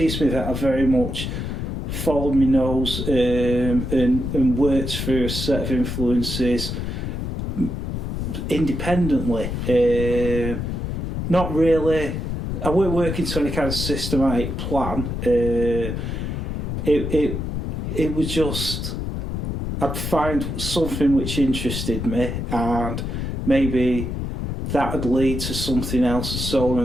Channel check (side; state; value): left; noise; rumble, 3 dB below the sound